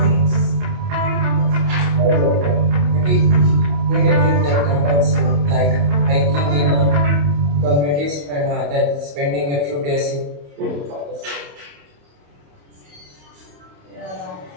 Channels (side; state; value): left; late; 28 ms